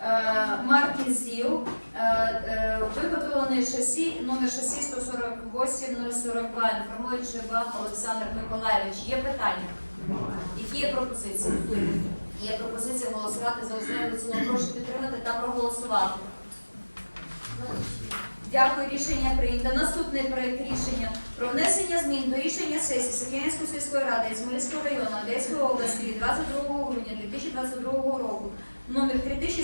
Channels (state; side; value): inverted; both; correlation -1.00